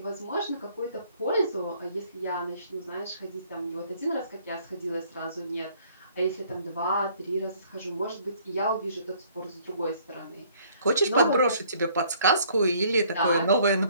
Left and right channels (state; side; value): inverted; both; correlation -0.60